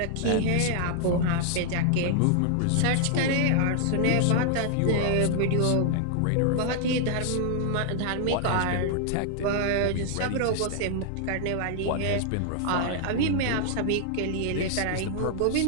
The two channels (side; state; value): both; different; correlation 0.00